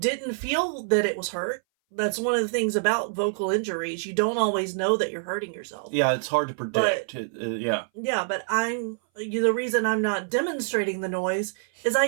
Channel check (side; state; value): left; silent; 59 dB below the other